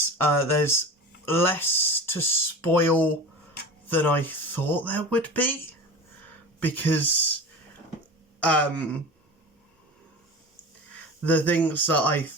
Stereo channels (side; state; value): both; normal; correlation 0.33